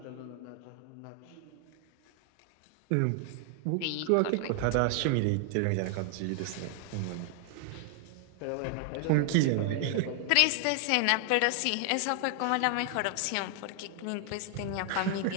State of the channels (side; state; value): both; different; correlation 0.00